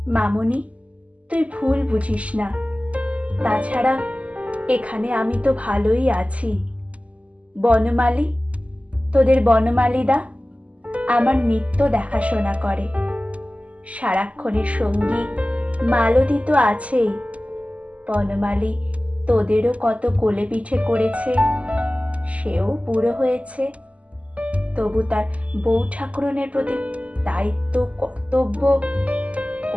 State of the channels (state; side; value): late; left; 0.066 ms